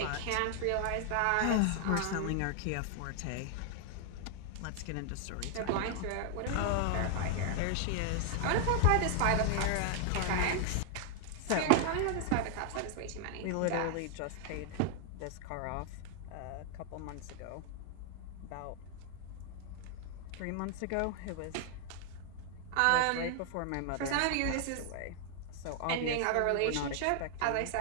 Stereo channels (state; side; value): different; both; correlation 0.00